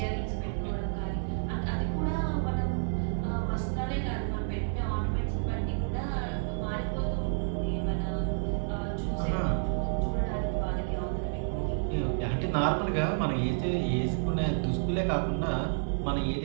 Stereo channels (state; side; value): silent; left; digital silence